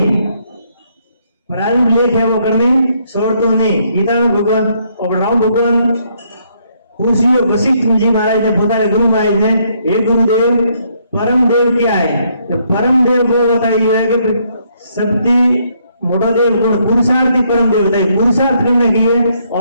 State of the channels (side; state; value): both; inverted; correlation -0.71